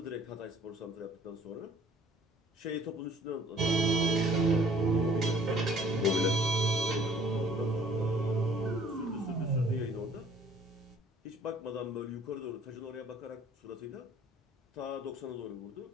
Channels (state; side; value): normal; both; correlation 0.56